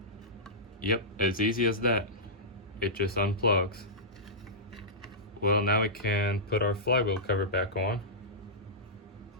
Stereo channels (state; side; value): normal; both; correlation -0.14